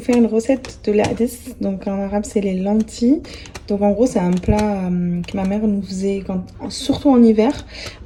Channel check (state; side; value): identical; both; correlation 1.00